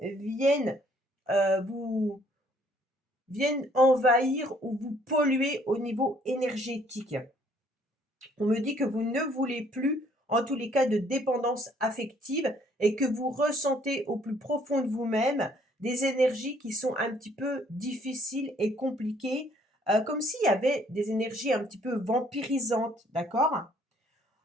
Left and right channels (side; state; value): both; normal; correlation 0.63